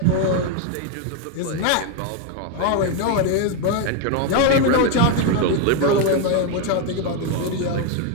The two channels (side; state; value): both; different; correlation 0.01